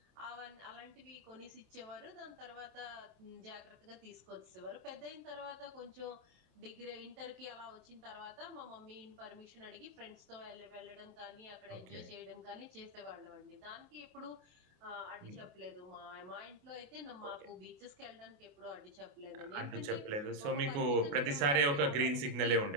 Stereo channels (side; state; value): left; late; 28 ms